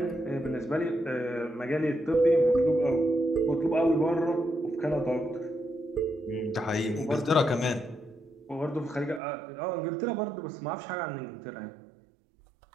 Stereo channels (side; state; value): left; drops out; at 9.2 s